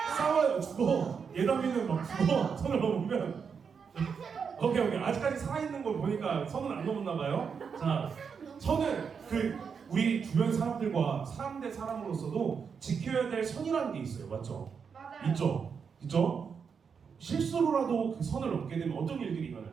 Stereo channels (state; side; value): quieter; left; 6.2 dB